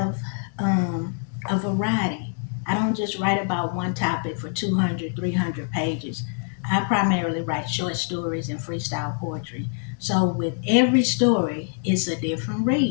a variety. I don't just write about one topic for 200, 300 pages. I primarily write short stories and freestyle poetry. So with every story, it's a different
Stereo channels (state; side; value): silent; right; 57 dB below the other